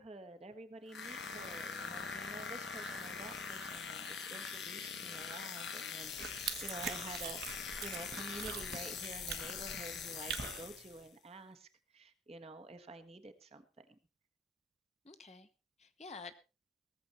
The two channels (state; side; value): normal; both; correlation 0.47